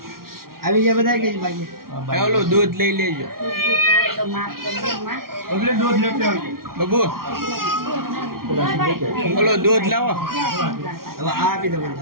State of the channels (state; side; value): late; left; 0.93 ms